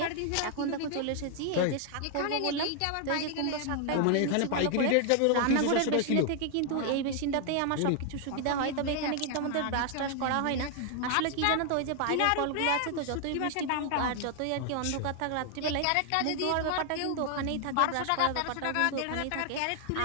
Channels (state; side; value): different; both; correlation 0.00